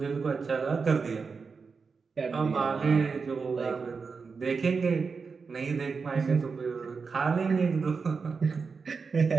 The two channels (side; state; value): left; quieter; 5.0 dB